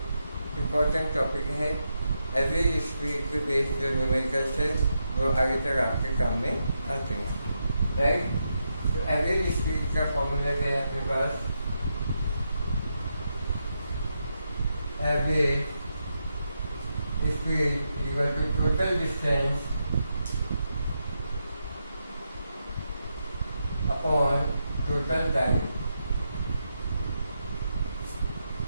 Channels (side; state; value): both; inverted; correlation -0.84